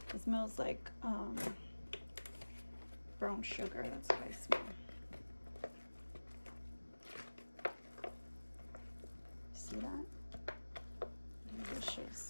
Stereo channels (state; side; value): inverted; both; correlation -1.00